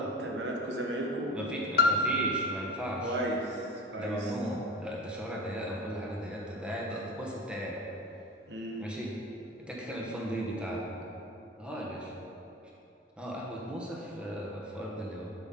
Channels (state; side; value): normal; both; correlation 0.31